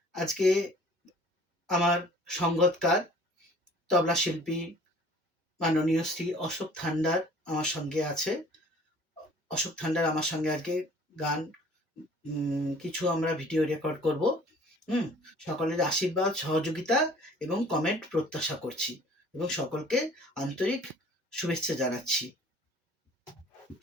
আজকে আমার সঙ্গতকার তবলা শিল্পী মাননীয় শ্রী অশোক থান্ডার আমার সঙ্গে আছে। অশোক থান্ডার আমার সঙ্গে আজকে গান কিছু আমরা ভিডিও রেকর্ড করব। সকলের আশীর্বাদ, সহযোগিতা এবং কমেন্ট প্রত্যাশা করছি এবং সকলকে আন্তরিক শুভেচ্ছা জানাচ্ছি।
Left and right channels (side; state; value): both; normal; correlation 0.51